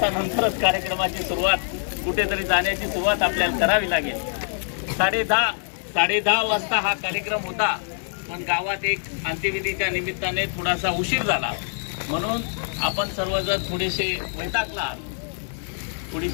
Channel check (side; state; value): right; silent; digital silence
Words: कार्यक्रमाची सुरुवात, कुठेतरी जाण्याची सुरुवात आपल्याला करावी लागेल. 10:30 वाजता हा कार्यक्रम होता, पण गावात एक अंत्यविधीच्या निमित्ताने थोडासा उशीर झाला म्हणून आपण सर्वजण थोडेसे वैतागला,